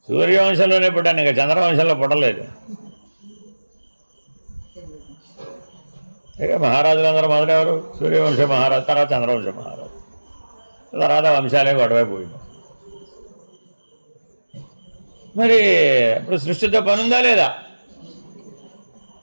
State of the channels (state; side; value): inverted; both; correlation -1.00